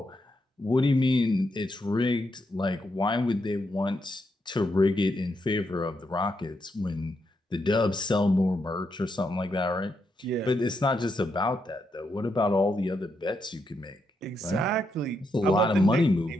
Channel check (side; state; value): both; normal; correlation 0.81